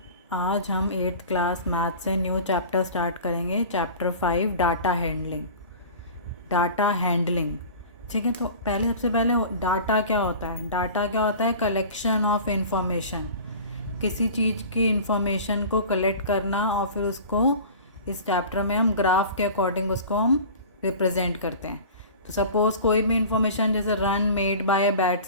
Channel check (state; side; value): inverted; both; correlation -0.39